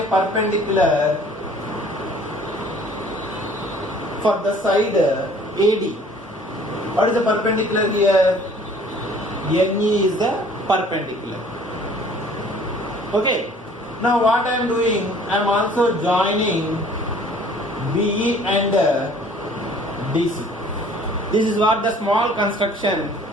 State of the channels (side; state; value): both; normal; correlation 0.53